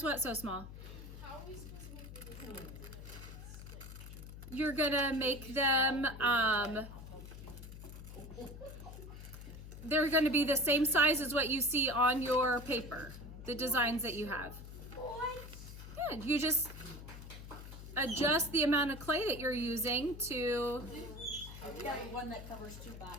what so small? How are we supposed to make these? You're going to make them, they're going to be the same size as what you see on your paper, the designs that you have. Good. You just adjust the amount of clay that you're using to... I've got one that covers 2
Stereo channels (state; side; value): noise; left; hum, 12 dB below the sound